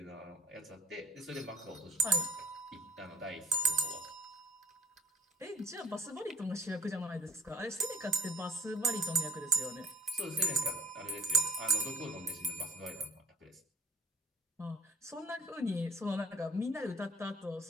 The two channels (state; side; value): normal; both; correlation 0.47